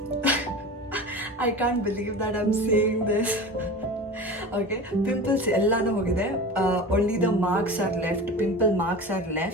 I can't believe that I'm saying this. Okay, pimples ಎಲ್ಲಾನು ಹೋಗಿದೆ, only the marks are left, pimple marks are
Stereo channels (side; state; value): both; normal; correlation 0.32